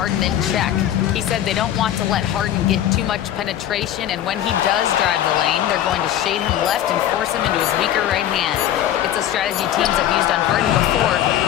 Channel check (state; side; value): quieter; right; 11.5 dB